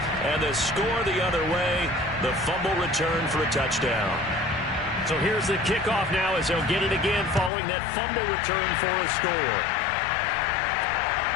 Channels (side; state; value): right; drops out; at 7.5 s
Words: and the score the other way, the fumble return for a touchdown. So here's the kickoff now as they'll get it again following that fumble return for a score.